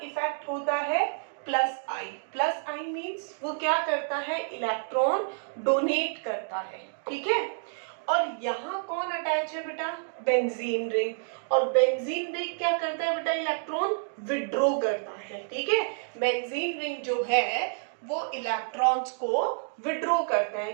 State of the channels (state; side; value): silent; left; digital silence